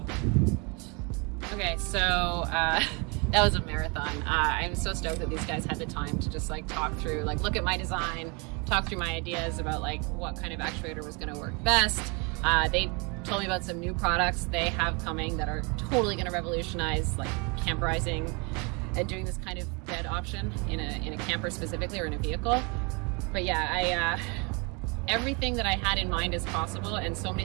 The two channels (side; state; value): left; quieter; 31.4 dB